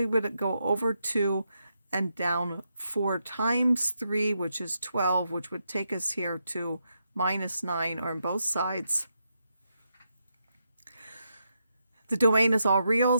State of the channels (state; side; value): inverted; both; correlation -0.83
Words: would go over 2 and down 4 times 3, which is 12, which would take us here to minus 9 on both sides. The domain is all real.